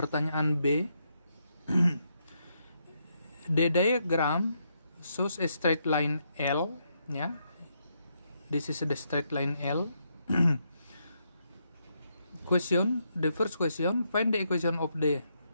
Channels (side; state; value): both; inverted; correlation -0.78